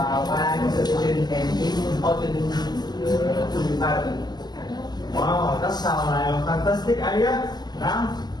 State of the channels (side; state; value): right; late; 0.20 ms